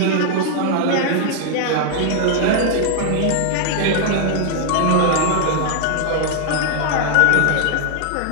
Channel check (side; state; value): both; different; correlation 0.00